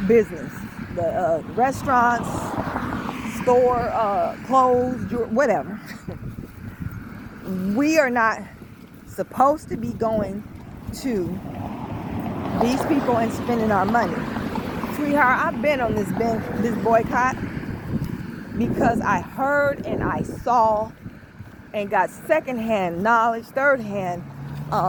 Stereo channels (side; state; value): both; identical; correlation 1.00